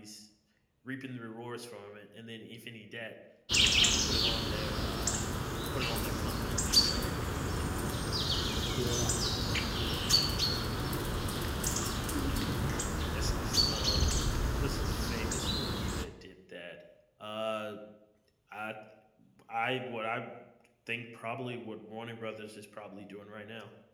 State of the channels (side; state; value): both; identical; correlation 1.00